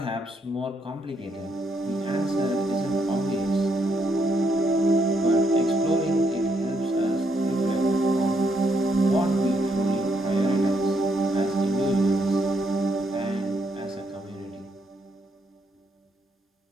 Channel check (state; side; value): normal; both; correlation 0.76